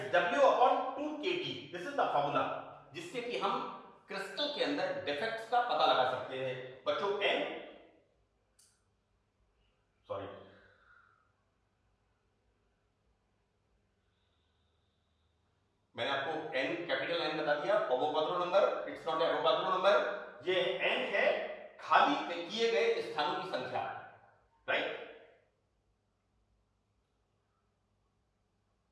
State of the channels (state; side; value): identical; both; correlation 1.00